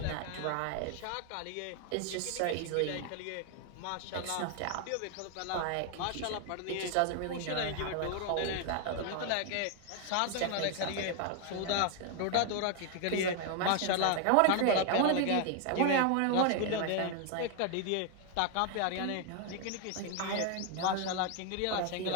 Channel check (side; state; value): both; different; correlation 0.00